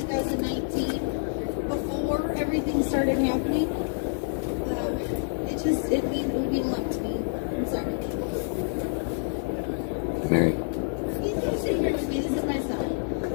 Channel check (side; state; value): right; silent; digital silence